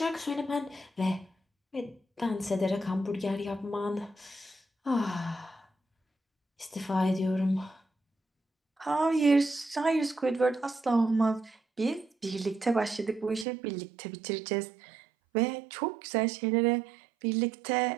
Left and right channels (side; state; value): left; drops out; at 13.5 s